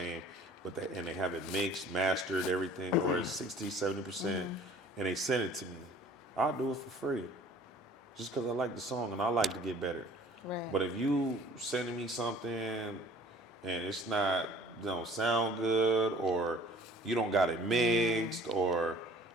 but they have it mixed, mastered, everything, or it's 60, 70%, and they send it to me. I'll do it for free, just because I like the song and I like to get better. Right. But if you sending me something and it's not, don't sound good, or you don't got it mixed, or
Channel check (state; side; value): normal; both; correlation 0.51